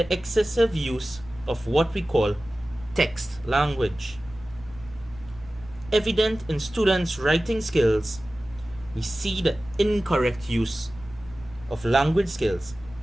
excessive use of what we call text language. Evident in students' writing skills, we see the incorrect use of language skills,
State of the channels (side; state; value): right; noise; rumble, 20 dB below the sound